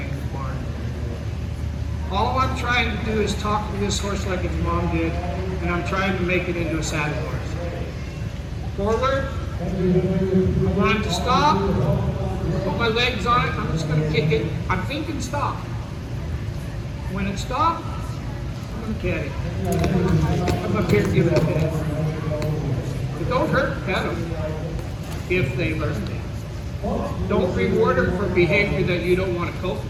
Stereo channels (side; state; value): both; identical; correlation 1.00